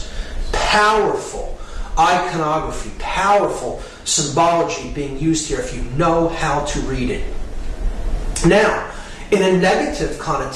Powerful iconography, powerful symbology being used here if you know how to read it. Now, in a negative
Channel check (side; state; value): both; identical; correlation 1.00